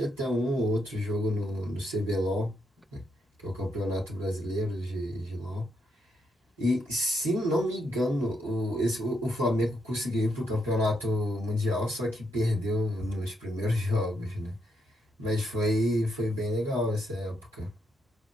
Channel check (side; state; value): both; normal; correlation 0.79